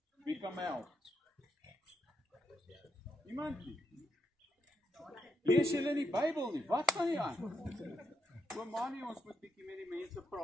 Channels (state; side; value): normal; both; correlation 0.80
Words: Wie kan my help? Iemand nie? Lees julle die Bybel nie? Wat van die aan? Oomanie, ons moet bietjie met die mense